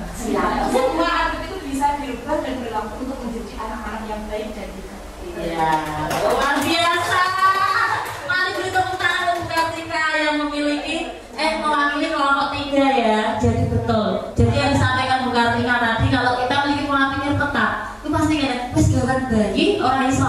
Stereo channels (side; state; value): both; identical; correlation 1.00